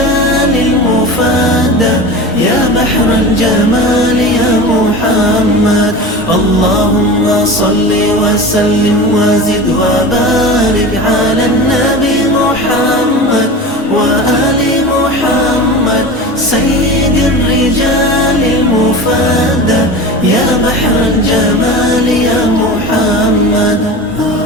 المفادى يا بحر الجمال يا محمد. اللهم صل وسلم وزد وبارك على النبي محمد وآل محمد سيد الرجال المفادى يا بحر الجمال يا محمد.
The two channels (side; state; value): both; normal; correlation 0.31